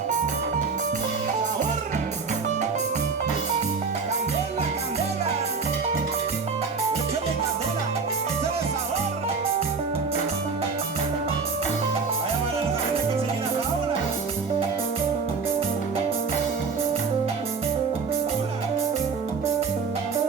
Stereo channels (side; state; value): left; quieter; 5.0 dB